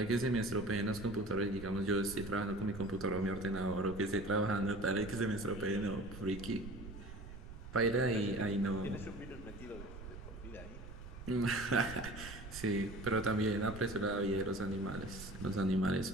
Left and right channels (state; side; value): noise; right; rumble, 12 dB below the sound